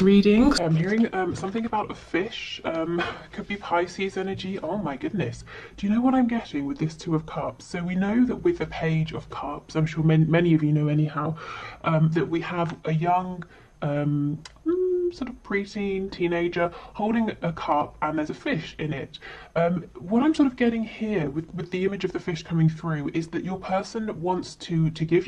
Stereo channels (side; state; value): both; identical; correlation 1.00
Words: I'm hearing something about a fish. Could be Pisces energy. Oh my goodness. Do you know what I'm getting with this Two of Cups? So we know that with the Page of Cups, I'm sure many of you know anyhow, that we have a young sort of preteen teenager holding a cup and there's a fish in it. What I'm sort of getting here with the image of the fish coming through is that your person wants to give